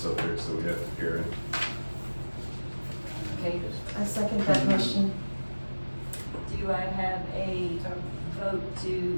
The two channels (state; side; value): inverted; both; correlation -1.00